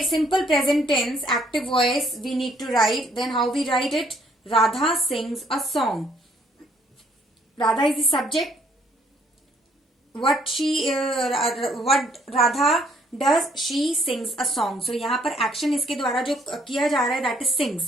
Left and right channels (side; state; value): both; normal; correlation 0.66